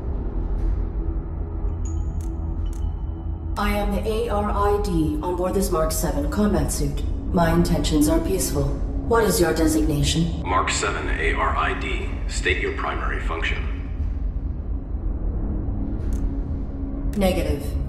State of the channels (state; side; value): identical; both; correlation 1.00